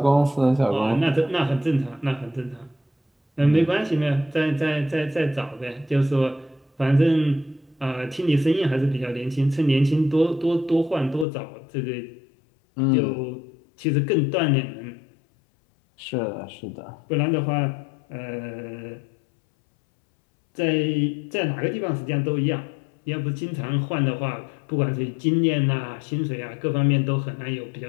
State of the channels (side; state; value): right; drops out; at 11.2 s